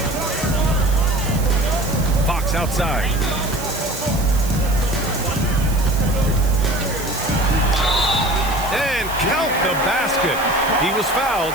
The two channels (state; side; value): noise; right; hiss, 13 dB below the sound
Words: Fox outside. And count the basket. He was fouled,